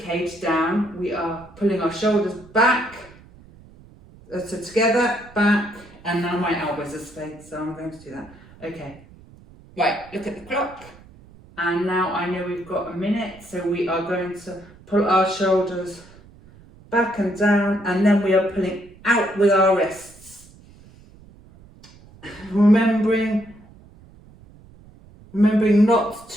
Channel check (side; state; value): right; noise; rumble, 23 dB below the sound